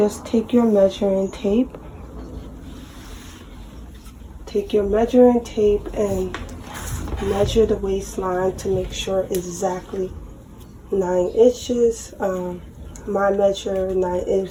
take your measuring tape. Take your measuring tape and measure the waistline to make sure exactly 9 inches. My measure 9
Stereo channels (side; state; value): both; identical; correlation 1.00